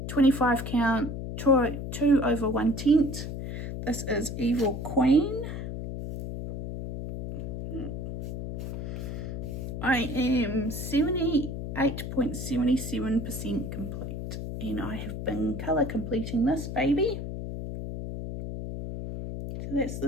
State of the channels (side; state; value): left; noise; hum, 6 dB below the sound